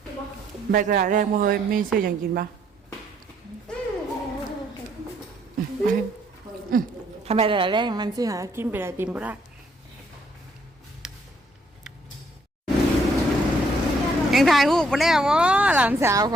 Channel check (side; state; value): both; normal; correlation 0.68